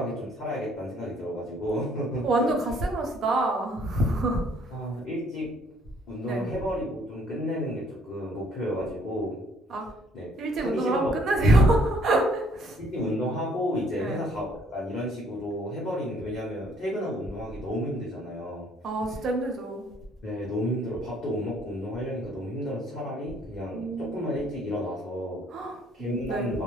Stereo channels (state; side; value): normal; both; correlation 0.62